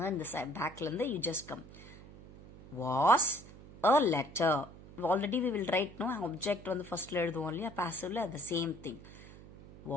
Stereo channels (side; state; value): right; noise; hum, 18 dB below the sound